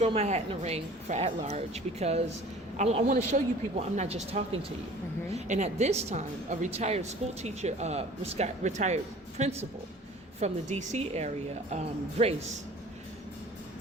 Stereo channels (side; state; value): both; normal; correlation 0.46